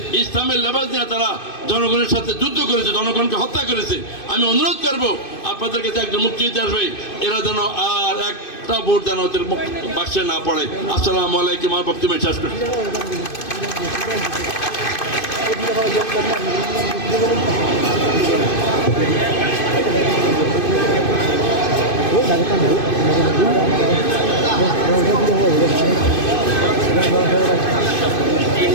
ইসলামের লেবাস দিয়ে তারা জনগণের সাথে যুদ্ধ করেছে, জনগণকে হত্যা করেছে। আমি অনুরোধ করবো আপনাদের কাছে, একজন মুক্তিযোদ্ধা আসবে, এরা যেন আর একটা ভোট যেন ওদের বাক্সে না পড়ে। আসসালামু আলাইকুম। আমার বক্তব্য শেষ করছি।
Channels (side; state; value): right; late; 2.5 ms